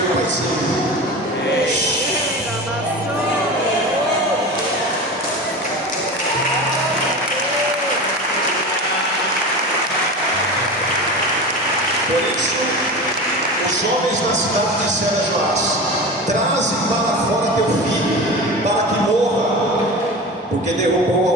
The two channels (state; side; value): normal; both; correlation 0.29